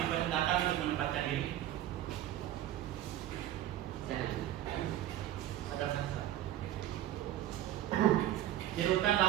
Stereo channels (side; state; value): left; quieter; 12.8 dB